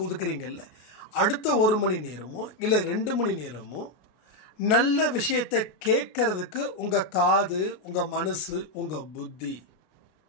ஒதுக்குறீங்கல்ல, அடுத்த 1 மணி நேரமோ இல்லை 2 மணி நேரமோ நல்ல விஷயத்தை கேட்கறதுக்கு உங்கள் காது, உங்கள் மனசு, உங்கள் புத்தி,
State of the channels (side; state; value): right; late; 33 ms